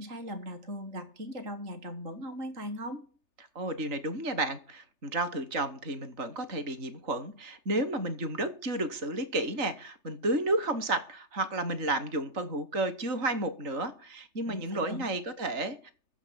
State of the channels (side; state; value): left; late; 3.3 ms